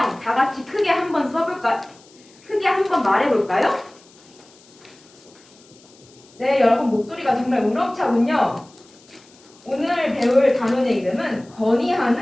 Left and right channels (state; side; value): noise; left; hiss, 27 dB below the sound